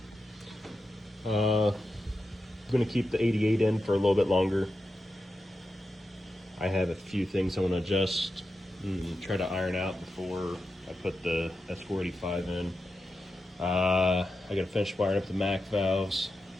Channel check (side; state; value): both; normal; correlation 0.89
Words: I'm gonna keep the 88 in for a little bit longer. I have a few things I want to adjust and try to iron out before I put the S485 in. I gotta finish wiring up the MAC valves.